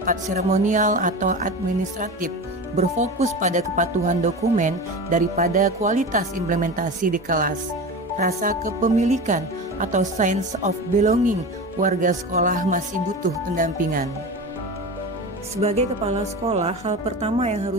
seremonial atau administratif, berfokus pada kepatuhan dokumen daripada kualitas implementasi di kelas. Rasa kepemilikan atau sense of belonging warga sekolah masih butuh pendampingan. Sebagai kepala sekolah, hal pertama yang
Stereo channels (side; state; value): both; normal; correlation 0.28